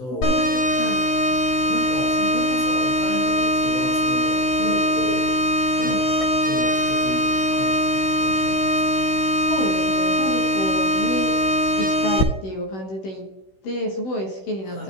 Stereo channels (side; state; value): right; late; 16 ms